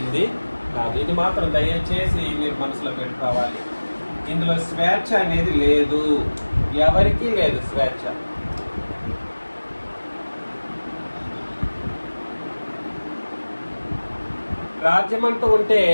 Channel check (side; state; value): both; inverted; correlation -1.00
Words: కాదు. ఇది మాత్రం దయచేసి మీరు మనసులో పెట్టుకోవాలి. ఇందులో స్వేచ్ఛ అనేది లేదు, ఎవరికీ లేదు స్వేచ్ఛ. రాజ్యం అంటూ ఉంటే